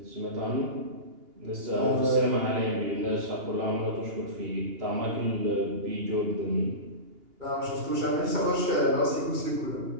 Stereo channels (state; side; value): late; left; 2.8 ms